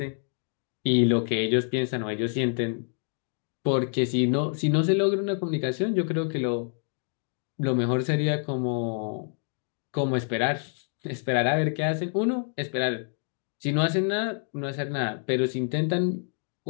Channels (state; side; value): silent; right; 57 dB below the other